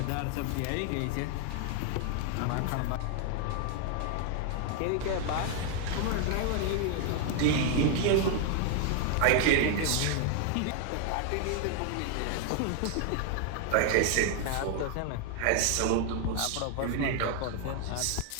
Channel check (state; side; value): different; both; correlation 0.00